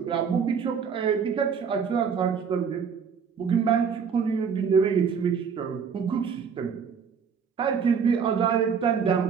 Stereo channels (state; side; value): quieter; left; 6.5 dB